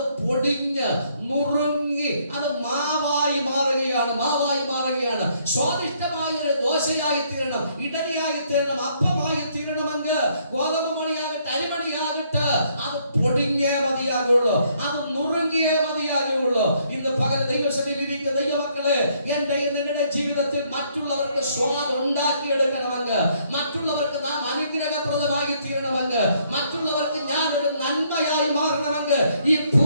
പൊടിഞ്ഞ് നുറുങ്ങി അത് മാവായി മാറുകയാണ്. സ്വാദിഷ്ടമായ ഒരു ദോശയായി തീരണം, ഇഡലിയായി തീരണം, അപ്പമായി തീരണമെങ്കിൽ ഗോതമ്പ് മണിയാകട്ടെ അരിമണിയാകട്ടെ അത് പൊടിഞ്ഞേ മതിയാകുള്ളൂ, അത് നുറുങ്ങിയേ മതിയാകുള്ളൂ. ഇന്ന് പകൽ ദൈവസഭയിലിരിക്കുന്ന ദൈവമക്കളെ, എന്റെ നിങ്ങളുടെ ജീവിതത്തിൽ മറ്റുള്ളവർക്ക് സ്വാദ് ഉണ്ടാക്കിയെടുക്കണമെങ്കിൽ, മറ്റുള്ളവർക്ക് നാം അനുഗ്രഹപ്രദമായി തീരണമെങ്കിൽ, മറ്റുള്ളവർക്ക് ഞാൻ ഒരു നന്മയായി മാറണമെങ്കിൽ, ഈ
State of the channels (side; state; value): both; inverted; correlation -0.68